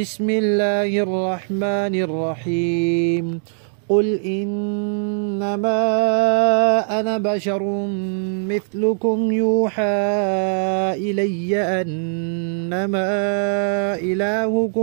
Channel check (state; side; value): silent; left; digital silence